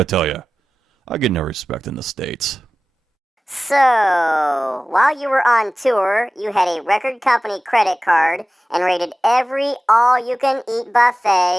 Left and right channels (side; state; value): both; normal; correlation 0.96